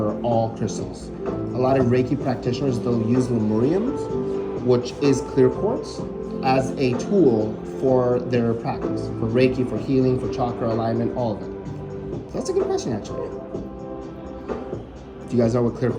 all crystals. A lot of Reiki practitioners, they'll use lemuriums, which is clear quartz, as a tool for their practice, for Reiki, for healing, for chakra alignment, all of it. So that's a good question, actually. Do you guys know what clear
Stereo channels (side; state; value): both; identical; correlation 1.00